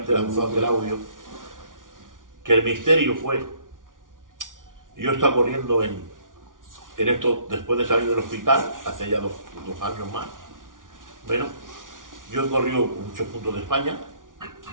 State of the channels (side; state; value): left; late; 0.88 ms